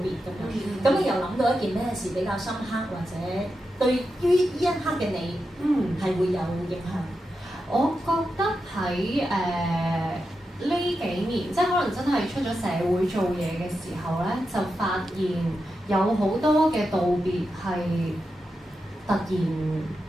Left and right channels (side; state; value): both; normal; correlation 0.88